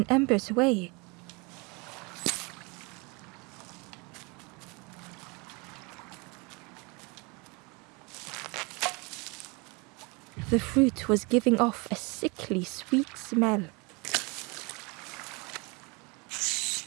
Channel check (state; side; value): quieter; left; 28.6 dB